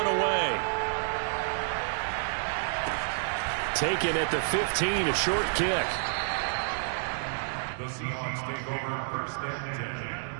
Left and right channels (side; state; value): left; silent; digital silence